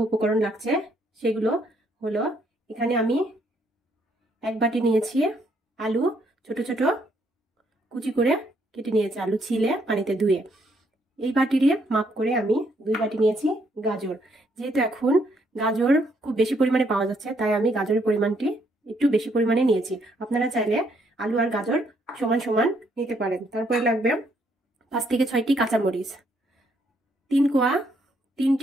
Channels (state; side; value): normal; both; correlation 0.71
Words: উপকরণ লাগছে সেগুলো হলো, এখানে আমি এক বাটি নিয়েছি আলু, ছোট ছোট কুচি করে কেটে নিয়েছি, আলু ছিলে পানিতে ধুয়ে। এই বাটিরে মাপ করে আমি 2 বাটি নিয়েছি গাজর। যেহেতু এখন গাজর খুব বেশি পরিমাণে পাওয়া যাচ্ছে, তাই আমি গাজরের পরিমাণটি একটু বেশি পরিমাণে নিয়েছি। আপনারা চাইলে আলু আর গাজর সমান সমান নিতে পারেন। তারপরে লাগবে 5 থেকে 6টি কাঁচামরিচ,